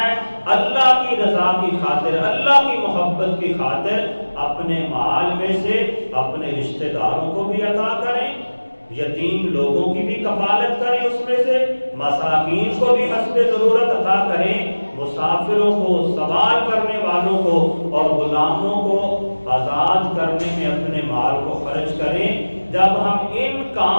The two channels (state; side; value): inverted; both; correlation -1.00